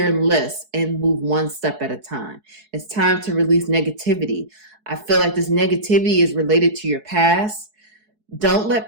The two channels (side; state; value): left; late; 4.7 ms